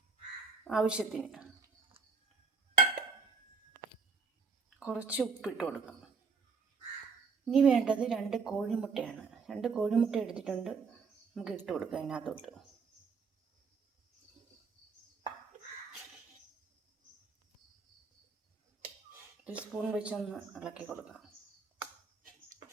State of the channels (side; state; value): left; quieter; 4.7 dB